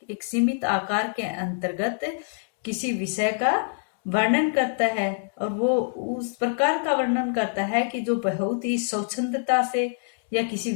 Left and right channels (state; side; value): silent; right; digital silence